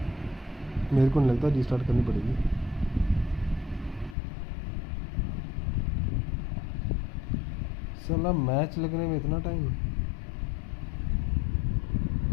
मेरे को नहीं लगता, रीस्टार्ट करनी पड़ेगी। साला मैच लगने में इतना टाइम,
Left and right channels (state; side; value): drops out; right; at 4.2 s